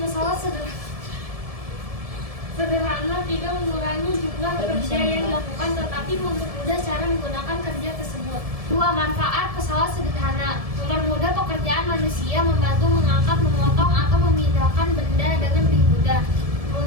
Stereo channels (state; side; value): late; left; 1.7 ms